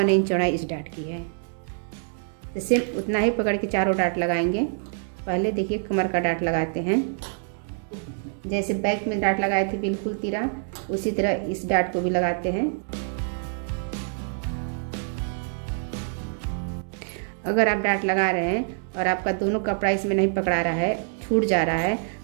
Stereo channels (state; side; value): silent; left; digital silence